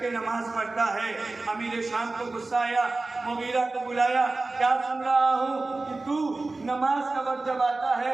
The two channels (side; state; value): left; quieter; 3.3 dB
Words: नमाज पढ़ता है। अमीर शाम को गुस्सा आया, मुगीरा को बुलाया, क्या सुन रहा हूँ कि तू नमाज का वक्त जब आता